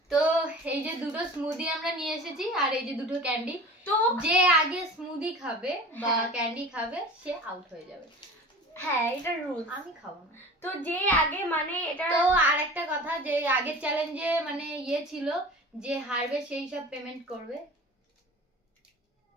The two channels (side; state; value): both; normal; correlation 0.38